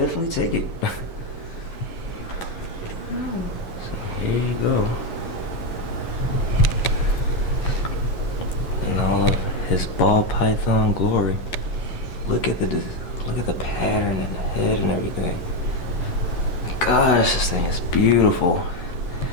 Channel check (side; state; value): right; late; 11 ms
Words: take it. So here you go. In all of his ball python glory. Look at the pattern and the head and everything. Gosh, this thing is beautiful.